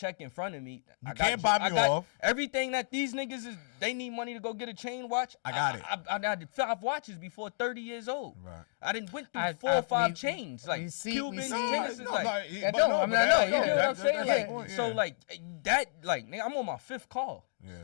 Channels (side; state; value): right; silent; digital silence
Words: in front of me. You can't buy me off. Everything that these niggas is, they need money to go get a chain watch. I got it. I did 5 watches before 30 years old. Right. I didn't went through 4 or 5 chains. Like Cubans, tennis. You know what I'm saying? So like that, like nigga, I'm on my 5th call.